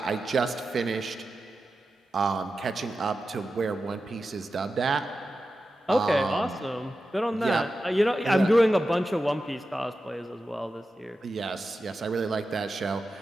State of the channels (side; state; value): both; normal; correlation 0.92